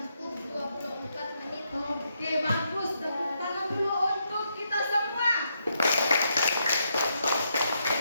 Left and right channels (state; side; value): inverted; both; correlation -0.79